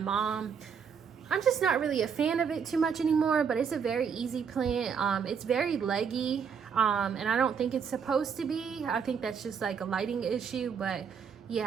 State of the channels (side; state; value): left; quieter; 6.7 dB